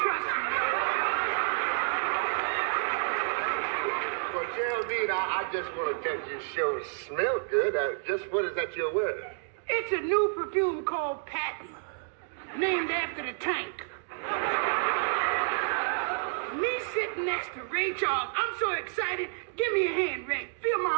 Trust me. Well, Geraldine, I just want to tell you, your show smell good. Just what is that you're wearing? It's a new perfume called Patton, named after the tank. Me sitting next to Ray Charles. I'm so excited. Give me a hand, Ray. Feel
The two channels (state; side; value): silent; left; 57 dB below the other